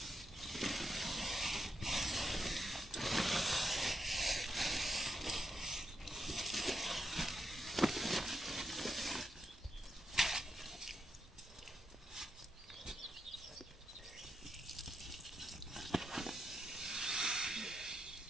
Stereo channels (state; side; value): normal; both; correlation 0.83